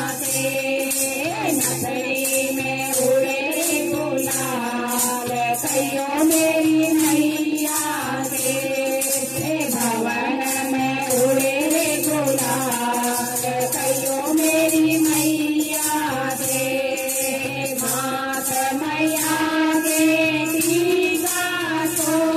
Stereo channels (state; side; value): identical; both; correlation 1.00